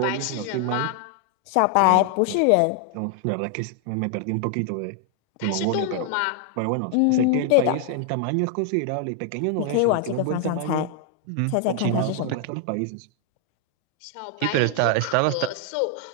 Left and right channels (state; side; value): different; both; correlation 0.00